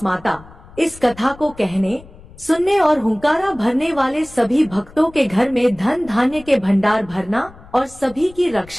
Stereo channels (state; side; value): noise; left; rumble, 21 dB below the sound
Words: माता, इस कथा को कहने सुनने और हुंकारा भरने वाले सभी भक्तों के घर में धन धान्य के भंडार भरना और सभी की